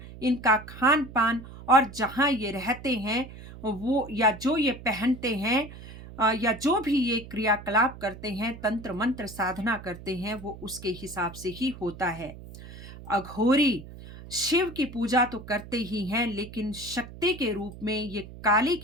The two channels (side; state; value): right; noise; hum, 15 dB below the sound